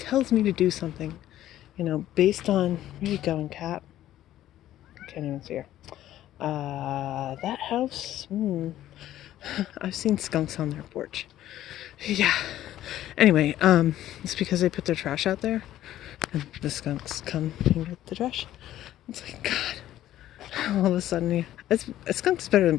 me to do something, based on, where are you going, cat? I can't even see her. That house, I've seen skunks on their porch. Yeah. Anyway, it's because they put their trash out there, and the skunks come and get the trash. It's like, God, all of a sudden, a skunk's better than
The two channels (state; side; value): quieter; right; 13.1 dB